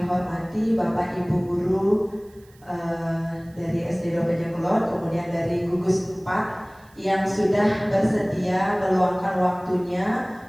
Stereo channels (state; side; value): noise; right; hiss, 30 dB below the sound